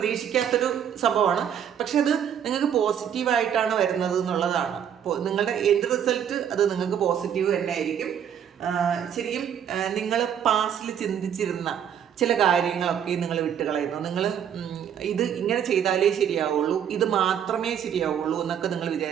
സംഭവമാണ്. പക്ഷെ അത് നിങ്ങൾക്ക് പോസിറ്റീവായിട്ടാണ് വരുന്നത് എന്നുള്ളതാണ്. നിങ്ങളുടെ എൻഡ് റിസൾട്ട് അത് നിങ്ങൾക്ക് പോസിറ്റീവ് തന്നെ ആയിരിക്കും. ശരിക്കും നിങ്ങൾ പാസ്റ്റിൽ ചിന്തിച്ചിരുന്ന ചില കാര്യങ്ങളൊക്കെ നിങ്ങൾ വിട്ടുകളയുന്നു. നിങ്ങൾ ഇത് ഇങ്ങനെ ചെയ്താലേ ശരിയാവുള്ളൂ, ഇത് മാത്രമേ ശരിയാവുള്ളൂ എന്നൊക്കെ നിങ്ങൾ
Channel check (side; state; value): left; quieter; 8.8 dB